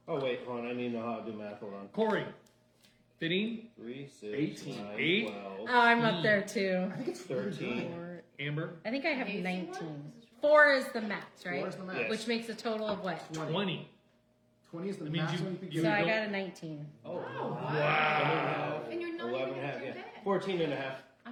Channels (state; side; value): identical; both; correlation 1.00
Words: Oh, wait, hold on. I need to know how to do math. Hold on. Corey, 15, 3, 6, 18. 9, 8. 12, Oh, I'm up there too. I think it's 13. Amber, I think I have 19. 4 is the max, right? 4 is the max. Yes. Which makes a total of what? 20. 20 is the That means maximum you- you can you So get. I don't- got a 19. Oh, Wow. And you're not 11 even and a half, at your yeah. bed. 14 and a half.